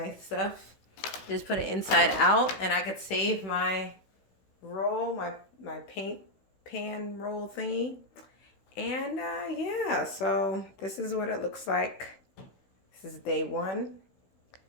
stuff, just put it inside out, and I could save my roll, my paint pan roll thingy. And yeah, so this is what it looks like. This is day 1.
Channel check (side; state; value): right; late; 16 ms